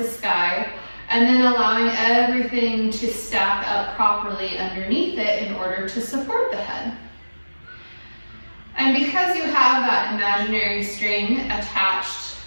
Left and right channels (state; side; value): inverted; both; correlation -1.00